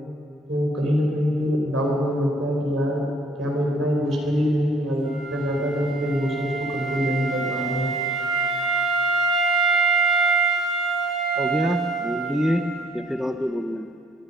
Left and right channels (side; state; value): both; normal; correlation 0.61